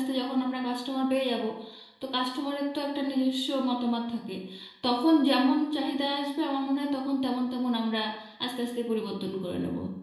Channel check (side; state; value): both; identical; correlation 1.00